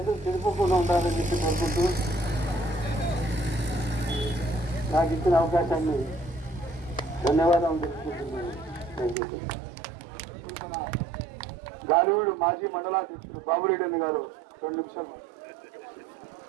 చెడిపోకుండా ఉండాలని చెప్పి కోరుకుంటూ నాకు ఇచ్చిన అవకాశాన్ని ధన్యవాదాలు తెలుసుకుంటున్నాను. గాలివీడు మాజీ మండలాధ్యక్షులు బాబురెడ్డి అన్న గారు 2 నిమిషాలు.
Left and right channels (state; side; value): drops out; left; at 9.2 s